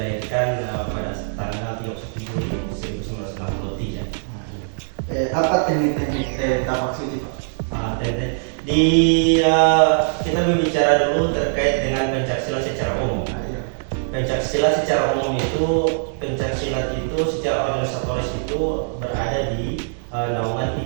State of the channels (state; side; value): silent; left; 64 dB below the other